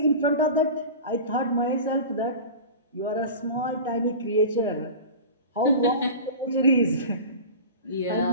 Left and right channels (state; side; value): inverted; both; correlation -0.32